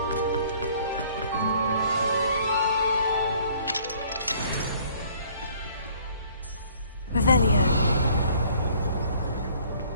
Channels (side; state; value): both; inverted; correlation -0.57